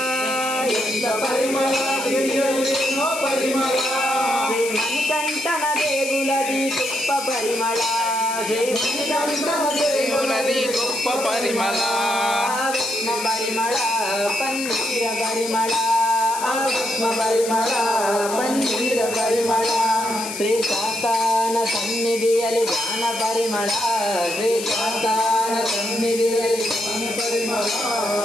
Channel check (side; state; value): left; noise; hiss, 8 dB below the sound